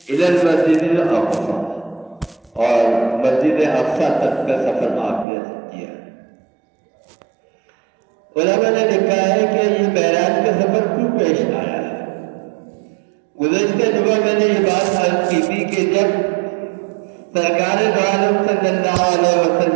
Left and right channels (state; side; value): drops out; left; at 5.2 s